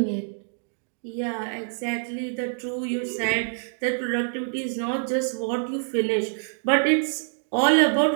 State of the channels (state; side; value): silent; left; digital silence